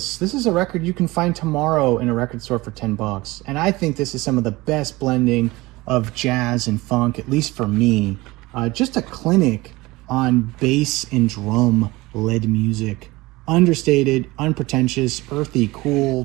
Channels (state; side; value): quieter; left; 20.9 dB